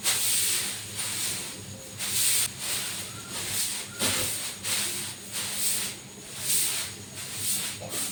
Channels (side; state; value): both; identical; correlation 1.00